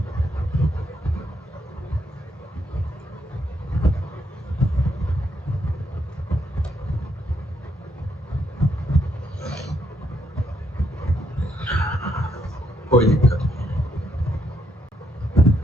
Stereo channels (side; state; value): both; normal; correlation 0.75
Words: कोई दिक्कत नहीं।